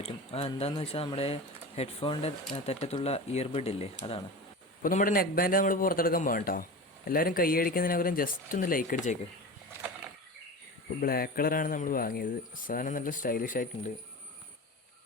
എന്താണെന്ന് വെച്ചാൽ നമ്മുടെ ഹെഡ്ഫോണിൻ്റെ തെറ്റത്തുള്ള ഇയർബഡ് ഇല്ലേ, അതാണ്. അപ്പോൾ നമ്മുടെ നെക്ക് ബാൻഡ് നമ്മൾ പുറത്തെടുക്കാൻ പോകാം കേട്ടോ. എല്ലാവരും കൈയടിക്കുന്നതിനകരം ജസ്റ്റ് ഒന്ന് ലൈക്ക് അടിച്ചേക്ക്. ഇപ്പോൾ ബ്ലാക്ക് കളറാണ് നമ്മൾ വാങ്ങിയത്. സാധനം നല്ല സ്റ്റൈലിഷ് ആയിട്ടുണ്ട്.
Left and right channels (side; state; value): both; normal; correlation 0.30